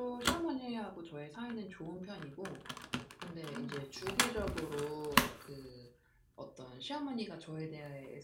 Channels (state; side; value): identical; both; correlation 1.00